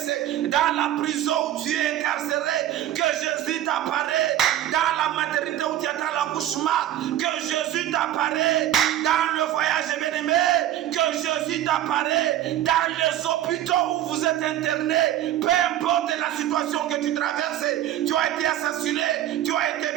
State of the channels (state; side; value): quieter; left; 12.5 dB